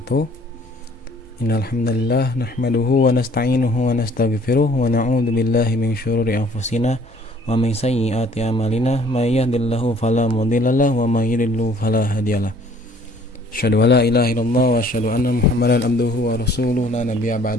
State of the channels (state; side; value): normal; both; correlation 0.57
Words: Innal hamdalillah nahmaduhu wa nasta'inuhu wa nastaghfiruh wa na'udzu billahi min syururi anfusina wa min sayyiati a'malina may yahdihillahu fala mudilla lahu wa may yudlil fala hadiyalah. Asyhadu an la ilaha illallah wa asyhadu anna Muhammadan abduhu wa rasuluhu la nabiyya